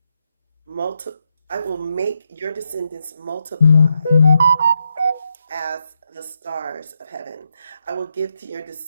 I will make your descendants multiply as the stars of heaven. I will give to your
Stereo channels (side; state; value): both; inverted; correlation -0.82